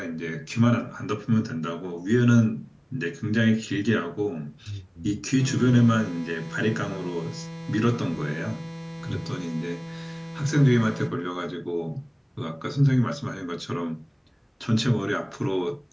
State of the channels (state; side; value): identical; both; correlation 1.00